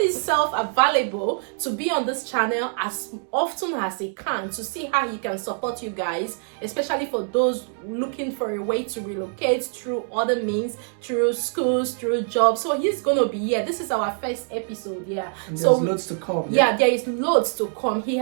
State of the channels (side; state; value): left; silent; 56 dB below the other